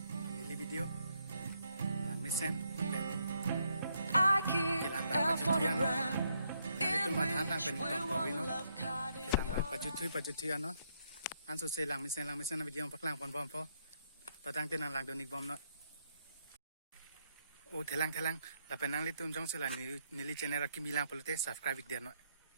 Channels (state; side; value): inverted; both; correlation -0.75